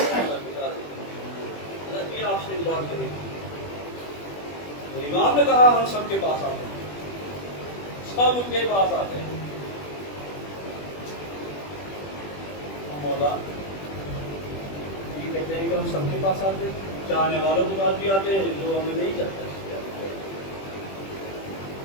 یہ آپ سے ایک بات کریں۔ امام نے کہا ہم سب کے پاس آتے ہیں، سب ان کے پاس آتے ہیں۔ مولا یہ کہتے ہیں کہ ہم سب کے پاس آتے ہیں، چاہنے والوں کے پاس بھی آتے ہیں، جو ہمیں نہیں چاہتے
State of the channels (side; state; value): right; late; 21 ms